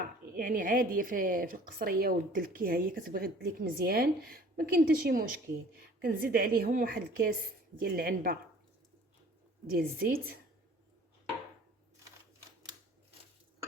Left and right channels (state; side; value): normal; both; correlation 0.50